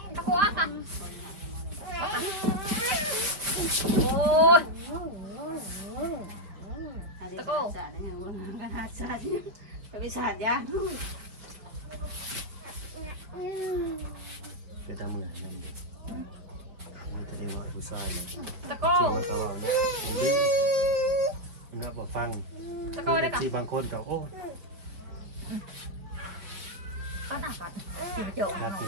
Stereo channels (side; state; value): left; late; 5.0 ms